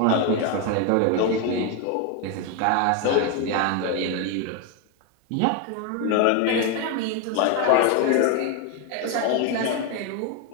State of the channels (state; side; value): different; both; correlation 0.02